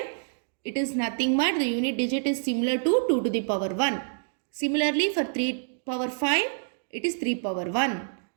it is nothing but the unit digit is similar to 2 to the power 1. Similarly for 3 power 5, it is 3 power 1.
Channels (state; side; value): silent; left; digital silence